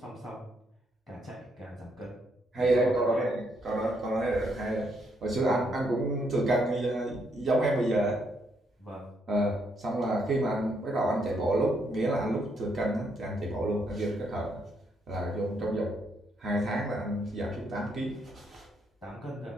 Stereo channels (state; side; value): normal; both; correlation 0.75